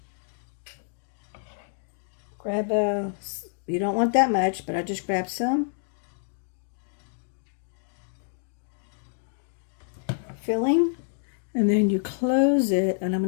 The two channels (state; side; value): silent; right; digital silence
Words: Grab you don't want that much, but I just grab some. Filling, and then you close it, and I'm